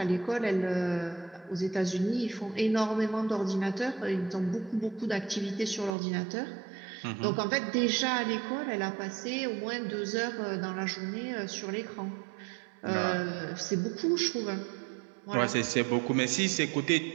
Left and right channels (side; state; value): left; drops out; at 5.9 s